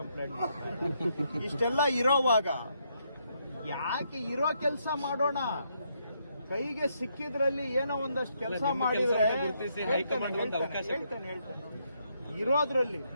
ಕಂಪ್ಲೇಂಟ್ ಮಾಡ್ತಾರೆ. ಇಷ್ಟೆಲ್ಲ ಇರೋವಾಗ ಯಾಕೆ ಇರೋ ಕೆಲಸ ಮಾಡೋಣ? ಕೈಗೆ ಸಿಕ್ಕಿದ್ರಲ್ಲಿ ಏನೋ ಒಂದಷ್ಟು ಕೆಲಸ ಮಾಡಿದ್ರೆ ಹೇಳ್ತೇನೆ. ಇರೋದ್ರಲ್ಲಿ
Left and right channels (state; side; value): inverted; both; correlation -0.76